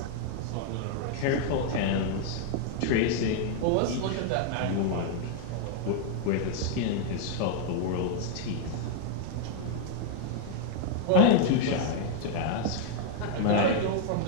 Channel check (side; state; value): both; different; correlation -0.01